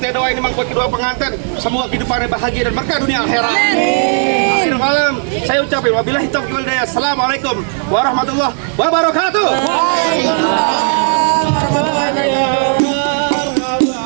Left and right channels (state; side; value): silent; left; 67 dB below the other